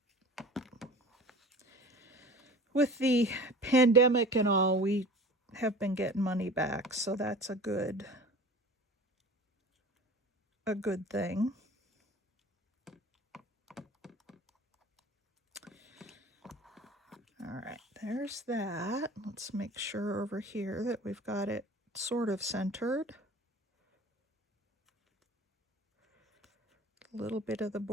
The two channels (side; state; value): both; normal; correlation 0.40